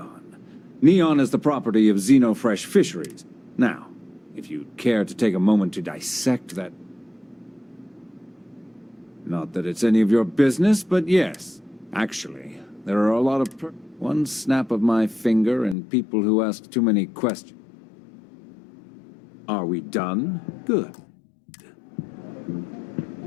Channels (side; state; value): right; drops out; at 15.8 s